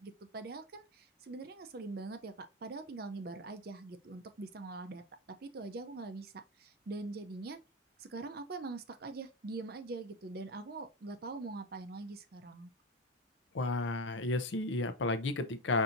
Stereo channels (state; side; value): normal; both; correlation 0.16